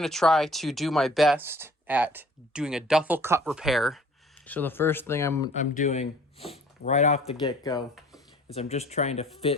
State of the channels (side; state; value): both; normal; correlation 0.52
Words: to try to do my best at doing a duffel cut repair. So the first thing I'm doing right off the get-go is I'm just trying to